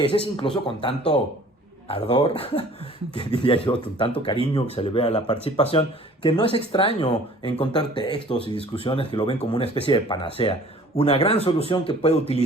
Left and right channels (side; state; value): both; normal; correlation 0.50